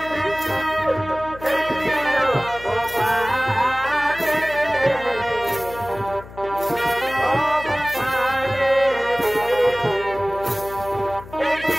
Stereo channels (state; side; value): noise; left; hum, 17 dB below the sound